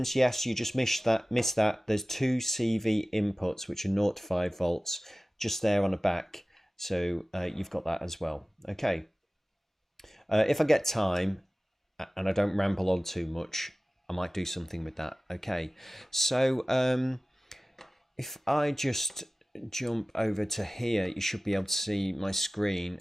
yes, you just missed that. There's two CV inputs which are 0 to 5 volts just there on the back. So you've got that as well. Okay. If I get time and I don't ramble on too much, I might do something with that. Okay. So if I just jump over to here, you should be able to see my screen,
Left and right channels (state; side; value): normal; both; correlation 0.97